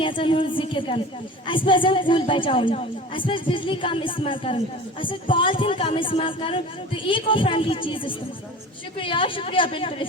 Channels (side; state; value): both; normal; correlation 0.37